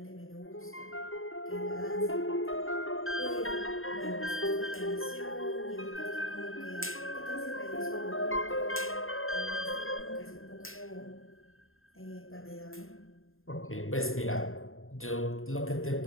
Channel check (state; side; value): late; right; 0.61 ms